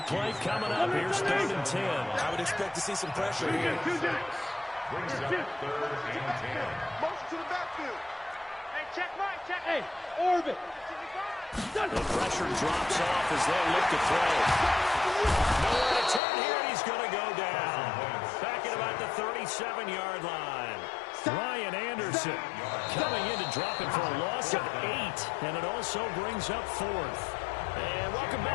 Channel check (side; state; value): right; drops out; at 16.2 s